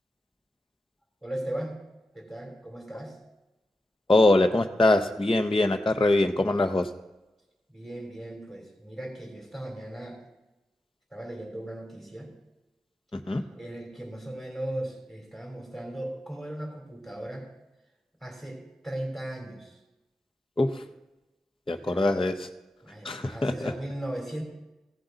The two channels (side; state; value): both; normal; correlation 0.89